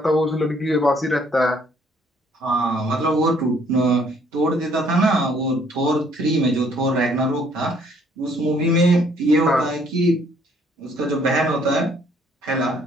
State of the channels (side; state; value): both; normal; correlation 0.63